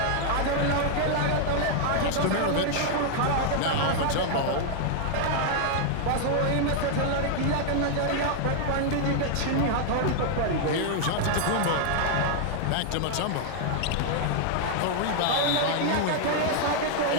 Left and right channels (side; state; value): both; different; correlation 0.00